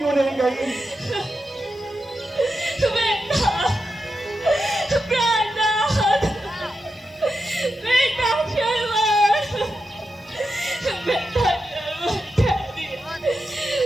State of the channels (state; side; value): normal; both; correlation 0.88